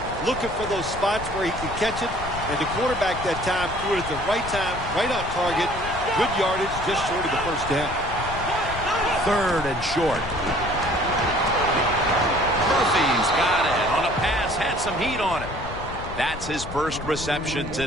looking for those spots where he can catch it, and the quarterback that time threw it at the right time, right on target. Good yardage, just short of the first down. 3rd and short. Murphy's got it on a pass, had some heat on it. That's his first reception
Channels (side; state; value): left; noise; rumble, 10 dB below the sound